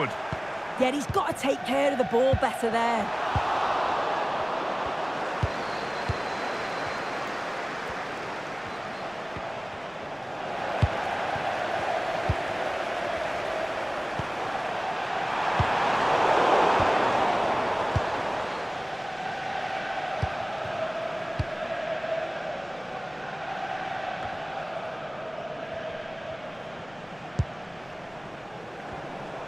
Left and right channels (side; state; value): left; noise; rumble, 26 dB below the sound